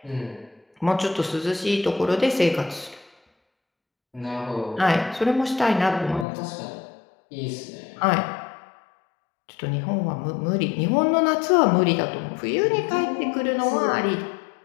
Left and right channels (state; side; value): drops out; right; at 6.2 s